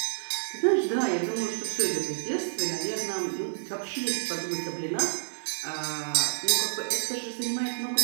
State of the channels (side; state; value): left; silent; digital silence